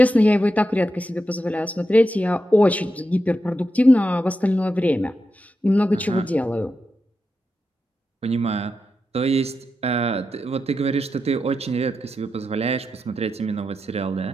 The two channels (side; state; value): both; normal; correlation 0.88